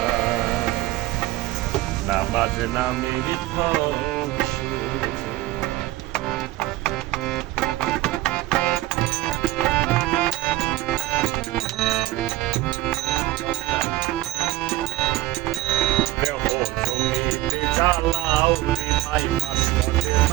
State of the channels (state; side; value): quieter; left; 17.0 dB